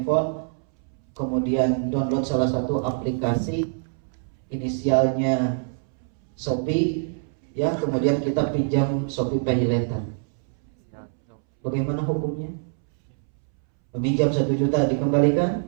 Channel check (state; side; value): silent; left; 62 dB below the other